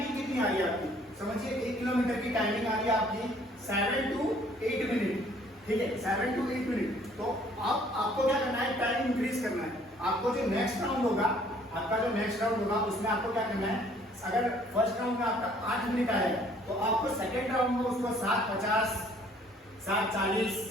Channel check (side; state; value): both; normal; correlation 0.59